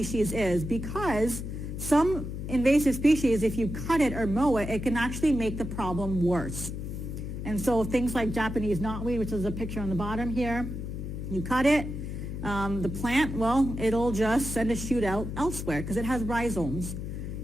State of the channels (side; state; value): left; noise; hum, 6 dB below the sound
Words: is, because some invasive species, if you cut it or mow it, it can actually make the problem worse. And so things like Japanese knotweed, which is a picture on the bottom here, you cut it, the plant, it'll just send a shoot out elsewhere because it has rhizomes.